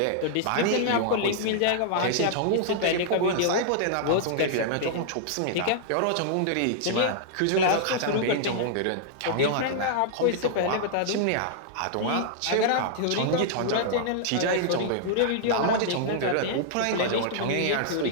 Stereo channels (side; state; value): both; different; correlation -0.01